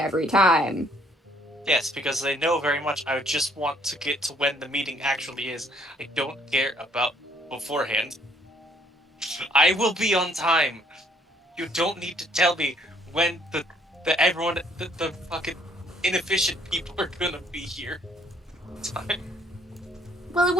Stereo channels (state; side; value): normal; both; correlation 0.63